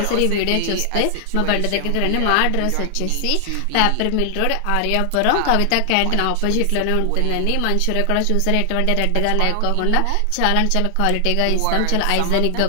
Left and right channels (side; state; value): both; different; correlation 0.00